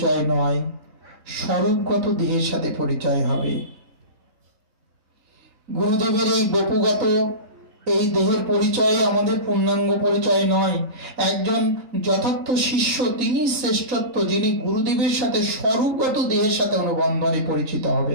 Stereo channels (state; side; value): late; left; 4.0 ms